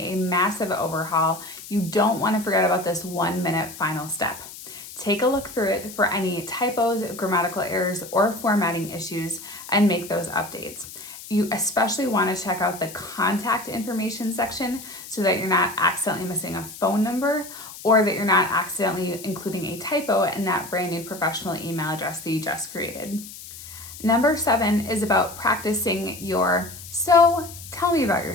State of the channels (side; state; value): left; noise; hiss, 14 dB below the sound